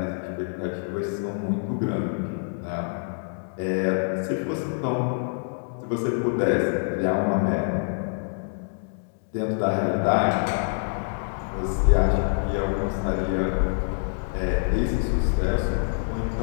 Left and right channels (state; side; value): silent; right; digital silence